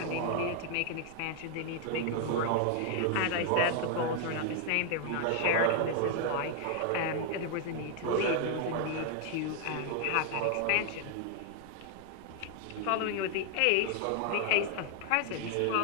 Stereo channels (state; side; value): different; both; correlation 0.00